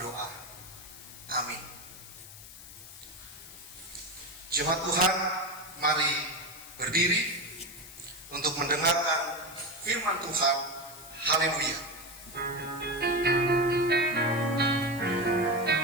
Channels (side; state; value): left; noise; hiss, 16 dB below the sound